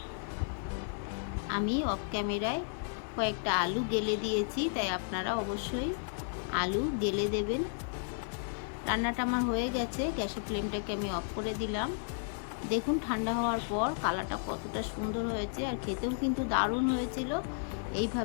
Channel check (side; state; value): right; silent; digital silence